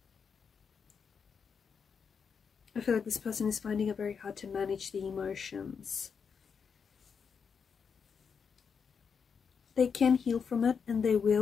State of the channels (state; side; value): quieter; right; 6.2 dB